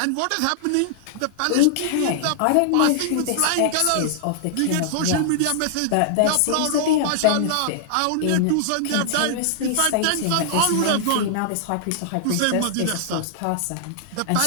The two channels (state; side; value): different; both; correlation -0.01